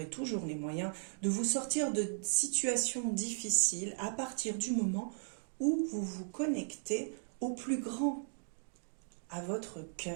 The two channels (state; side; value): silent; left; digital silence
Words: toujours les moyens, de vous sortir de situations difficiles à partir du moment où vous vous connectez au plus grand, à votre